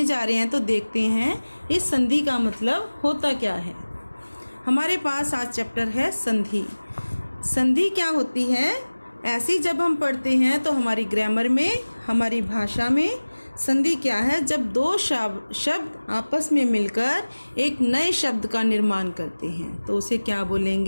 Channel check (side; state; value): both; inverted; correlation -1.00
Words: जा रहे हैं, तो देखते हैं इस संधि का मतलब होता क्या है। हमारे पास आज चैप्टर है संधि। संधि क्या होती है? ऐसी जब हम पढ़ते हैं तो हमारी ग्रामर में, हमारी भाषा में संधि क्या है? जब दो शब्द आपस में मिलकर एक नए शब्द का निर्माण करते हैं तो उसे क्या